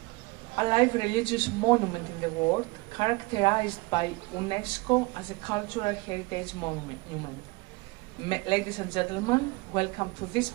alive religious monument in the world, characterized by UNESCO as a cultural heritage monument. Ladies and gentlemen, welcome to this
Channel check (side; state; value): left; quieter; 24.6 dB